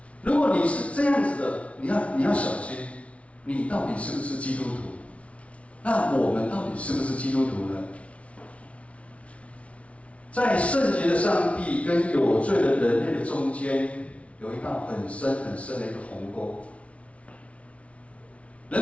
如果你是这样子的，你要小心，你到底是不是基督徒？那我们到底是不是基督徒呢？在圣洁的上帝跟有罪的人类的中间，有一道很深很深的一个鸿沟。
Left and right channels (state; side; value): late; right; 0.063 ms